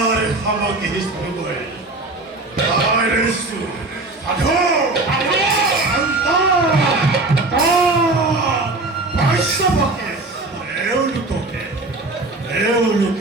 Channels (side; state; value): left; quieter; 3.1 dB